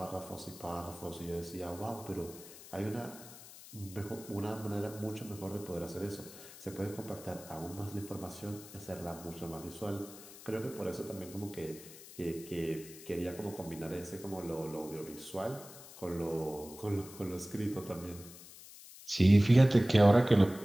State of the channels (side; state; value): left; noise; hiss, 17 dB below the sound